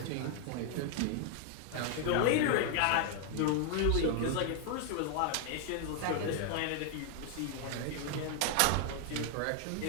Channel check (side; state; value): both; different; correlation 0.00